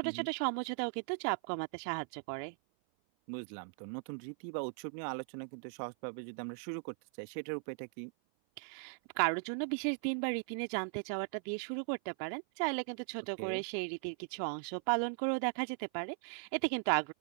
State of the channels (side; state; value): left; silent; 52 dB below the other